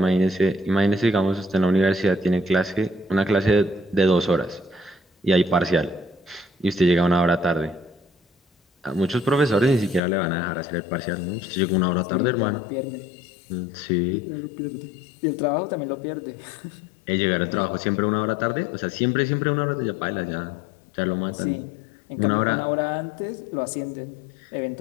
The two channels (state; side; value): drops out; right; at 10.0 s